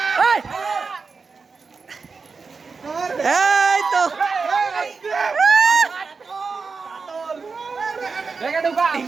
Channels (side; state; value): left; quieter; 4.7 dB